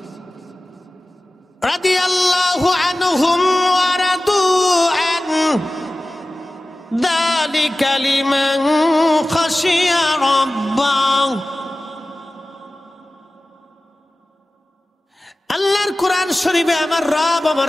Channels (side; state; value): both; normal; correlation 0.96